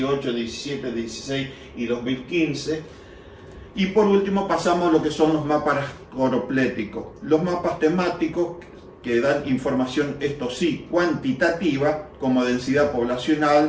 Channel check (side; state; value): both; identical; correlation 1.00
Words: 17, 16 y 2015. Y por último pasamos a lo que son los mapas coropléticos. Los mapas temáticos, que dan información, esto sí, cuantitativa, como densidad